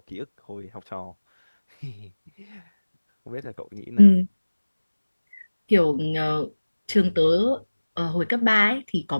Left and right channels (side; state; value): both; inverted; correlation -1.00